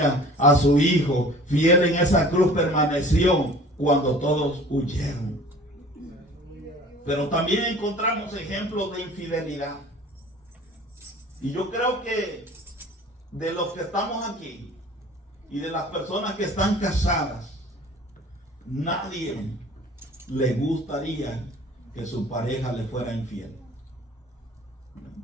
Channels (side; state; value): both; normal; correlation 0.46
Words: a su hijo, fiel en esa cruz permaneció cuando todos huyeron. Pero también encontramos ejemplos de infidelidad. Y yo creo que de los que estamos aquí y de las personas que están casadas, nadie le gustaría que su pareja le fuera infiel.